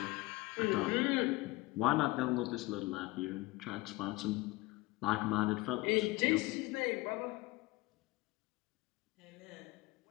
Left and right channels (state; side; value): quieter; right; 21.1 dB